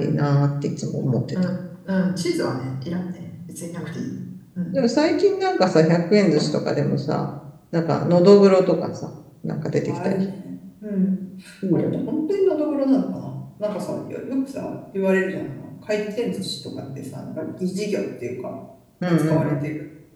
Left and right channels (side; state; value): both; identical; correlation 1.00